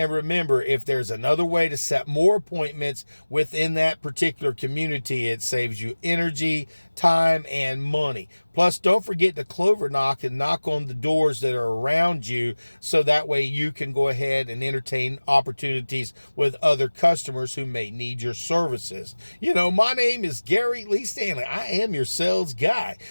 remember, if there's another way to set more appointments within that particular community. It saves you energy, time, and money. Plus, don't forget to clover knock and knock on the doors that are around you, so that way you can go ahead and entertain opportunities with other customers who may need your services. You know, my name is Gary Lee Stanley. I am your sales guy.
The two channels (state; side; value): inverted; both; correlation -1.00